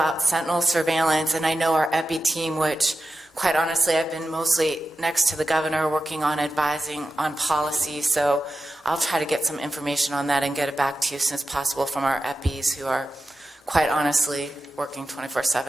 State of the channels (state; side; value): normal; both; correlation 0.91